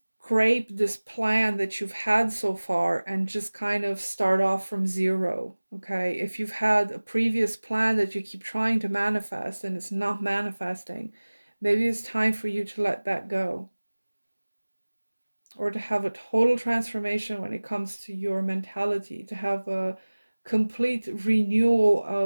this plan that you've had so far and just kind of start off from zero. Okay, if you've had a previous plan that you keep trying to manifest and it's not manifesting, maybe it's time for you to let that go, or to have a total transformation when it comes to your mentality, to have a complete renewal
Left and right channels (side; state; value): both; inverted; correlation -1.00